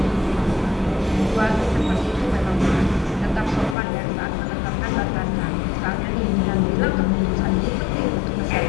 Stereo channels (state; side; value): drops out; right; at 3.8 s